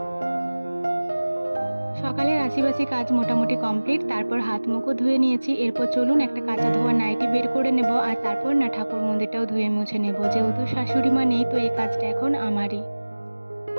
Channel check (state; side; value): inverted; both; correlation -1.00